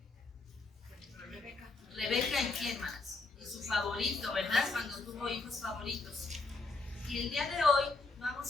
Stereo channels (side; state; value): right; quieter; 3.7 dB